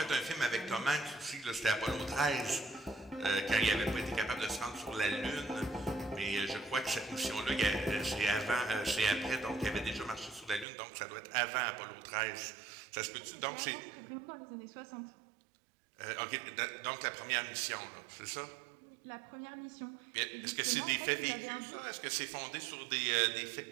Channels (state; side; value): drops out; left; at 10.7 s